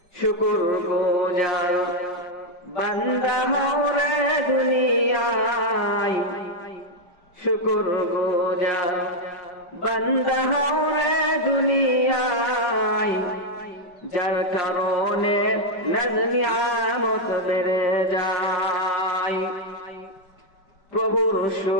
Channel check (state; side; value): late; right; 5.2 ms